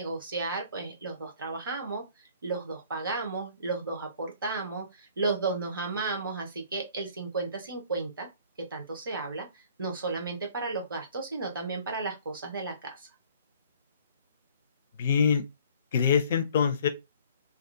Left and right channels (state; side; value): inverted; both; correlation -0.55